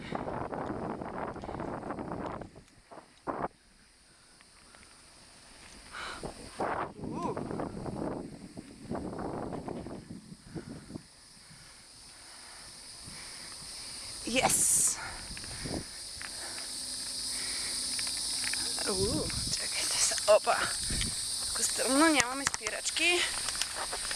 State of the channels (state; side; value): identical; both; correlation 1.00